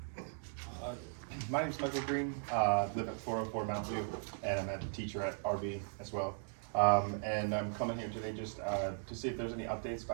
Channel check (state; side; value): silent; left; digital silence